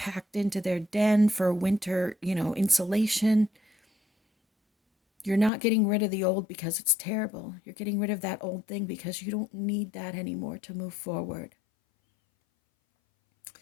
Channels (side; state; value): right; drops out; at 5.5 s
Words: into their den for winter, insulation. You're not getting rid of the old because it's terrible. You're getting rid of that old thing because you don't need that anymore to move forward.